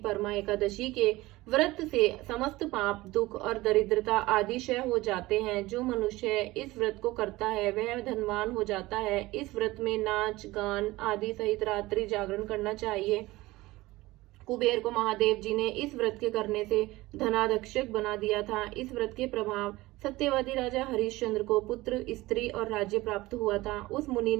एकादशी के व्रत से समस्त पाप, दुख और दरिद्रता आदि क्षय हो जाते हैं। जो मनुष्य इस व्रत को करता है वह धनवान हो जाता है। इस व्रत में नाच गान आदि सहित रात्रि जागरण करना चाहिए। कुबेर को महादेव जी ने इस व्रत के करने से धनाध्यक्षक बना दिया था। इस व्रत के प्रभाव सत्यवादी राजा हरिश्चंद्र को पुत्र, स्त्री और राज्य प्राप्त हुआ था। उस मुनि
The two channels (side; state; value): left; quieter; 19.2 dB